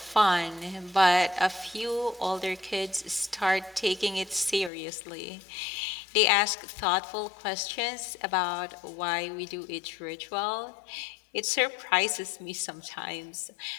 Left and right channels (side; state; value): right; drops out; at 4.7 s